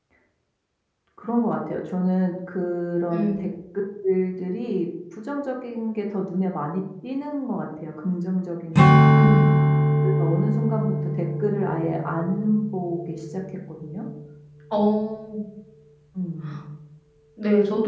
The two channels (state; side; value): identical; both; correlation 1.00